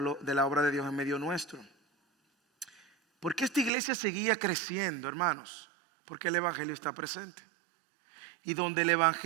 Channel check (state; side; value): drops out; left; at 3.7 s